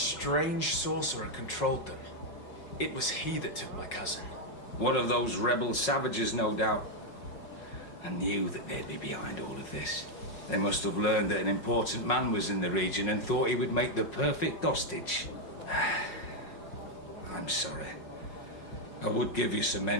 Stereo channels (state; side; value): late; right; 5.5 ms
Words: sorcerer controlled them. It was he that took my cousin. One of those rebel savages, no doubt. I knew that they'd be behind all of this. They must have learned that an important man was in the region and thought he would make the perfect hostage. I'm sorry. I would give you some